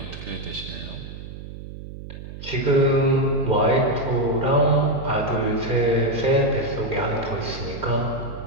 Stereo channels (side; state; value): right; noise; hum, 12 dB below the sound